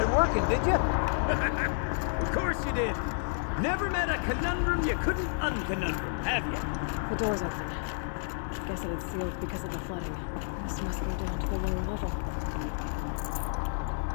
it working, did you? Of course you did. Never met a conundrum you couldn't unconundrum, have you? The door's open. Guess it had sealed because of the flooding. This must go down to the lower level.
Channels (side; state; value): right; silent; 58 dB below the other